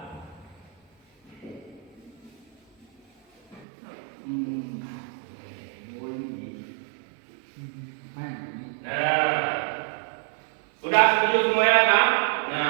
Nah, sudah setuju semuanya kan?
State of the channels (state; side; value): drops out; left; at 3.7 s